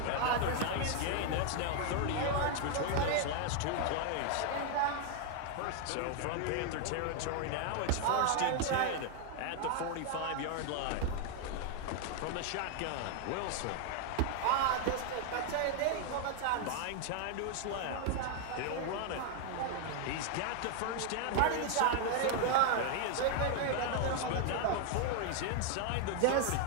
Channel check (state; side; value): different; both; correlation 0.00